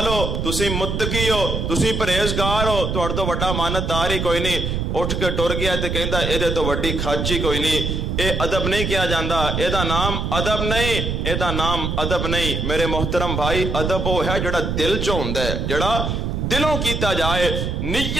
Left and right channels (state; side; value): noise; right; rumble, 1 dB below the sound